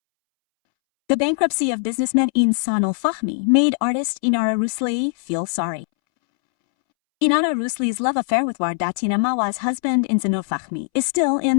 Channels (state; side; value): silent; right; 65 dB below the other